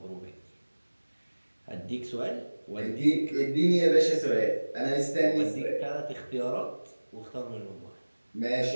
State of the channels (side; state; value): both; inverted; correlation -1.00